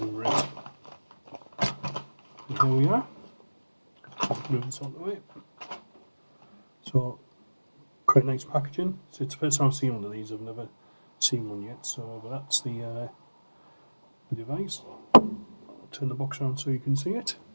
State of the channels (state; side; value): inverted; both; correlation -1.00